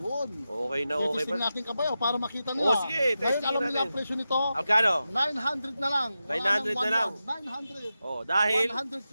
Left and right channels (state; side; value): inverted; both; correlation -0.91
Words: Okay na, okay Testing pa. natin Kabayaw para makita nila. Oo, sige, Ngayon testing alam nila natin. ang presyo nito. Magkano? 900 na lang. Wala 900 nang na lang. 1,100. 900. Oh, dahil...